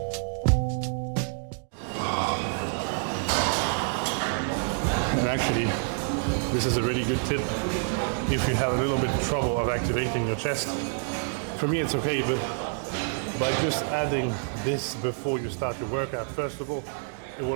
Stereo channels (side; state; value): left; silent; 60 dB below the other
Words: And actually, this is a really good tip if you have a little bit of trouble of activating your chest. For me it's okay, but by just adding this before you start your workout, first of all, it